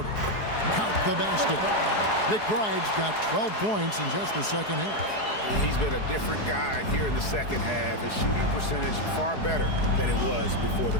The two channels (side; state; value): right; late; 4.7 ms